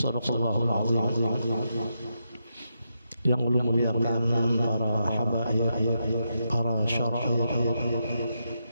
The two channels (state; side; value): inverted; both; correlation -0.83